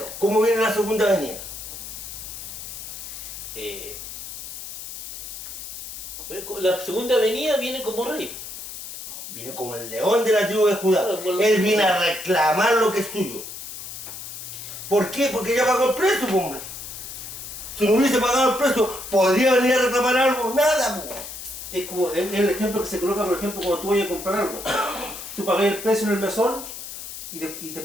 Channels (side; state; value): left; noise; hiss, 10 dB below the sound